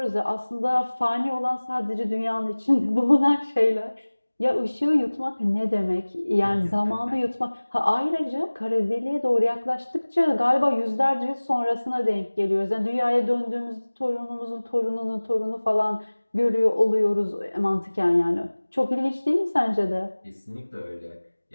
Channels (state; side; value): inverted; both; correlation -1.00